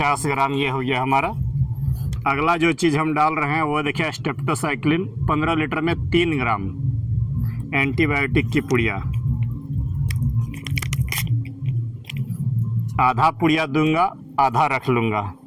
ग्राम ये हो गया हमारा। अगला जो चीज़ हम डाल रहे हैं वो देखिए स्टेप्टोसाइक्लिन 15 लीटर में 3 ग्राम एंटीबायोटिक की पुड़िया। आधा पुड़िया दूंगा, आधा रख लूँगा।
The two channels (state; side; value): identical; both; correlation 1.00